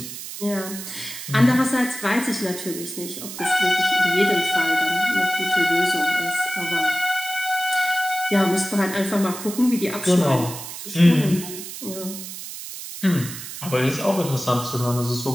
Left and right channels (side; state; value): right; noise; hiss, 10 dB below the sound